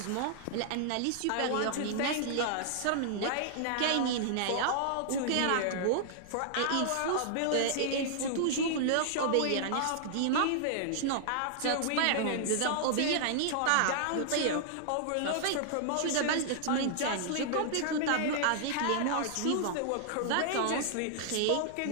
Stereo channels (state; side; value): different; both; correlation -0.01